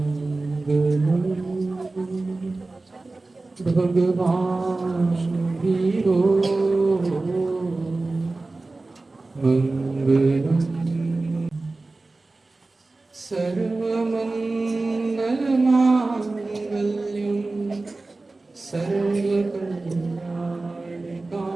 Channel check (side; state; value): left; quieter; 3.3 dB